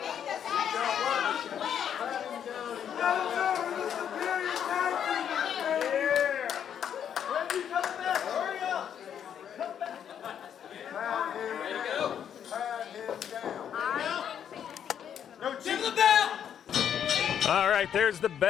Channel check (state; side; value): quieter; right; 8.9 dB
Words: All right, there's the